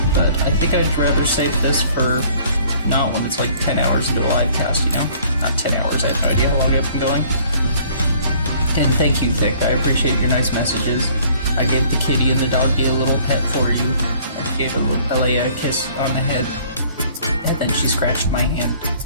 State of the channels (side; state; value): both; inverted; correlation -0.56